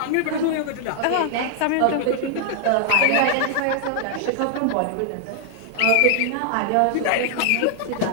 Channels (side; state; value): both; different; correlation 0.00